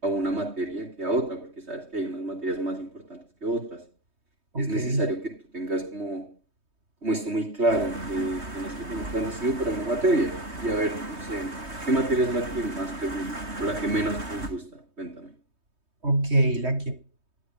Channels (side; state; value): left; late; 3.2 ms